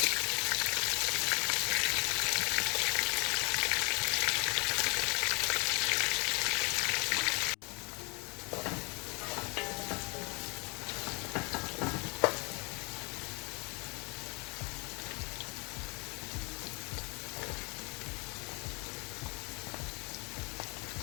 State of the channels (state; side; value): quieter; right; 30.3 dB